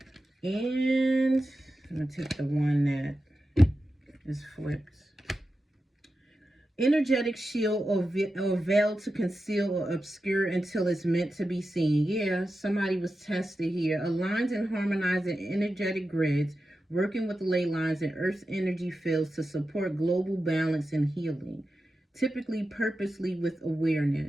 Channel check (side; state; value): both; normal; correlation 0.91